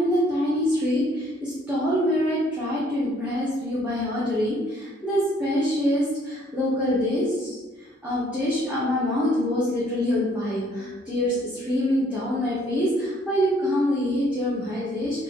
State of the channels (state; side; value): normal; both; correlation 0.63